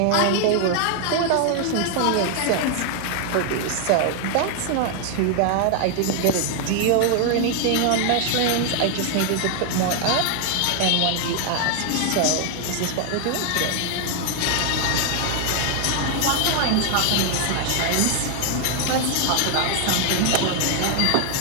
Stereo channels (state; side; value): different; both; correlation 0.00